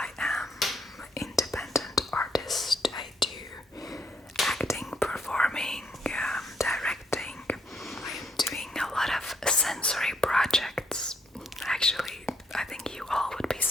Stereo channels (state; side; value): normal; both; correlation 0.71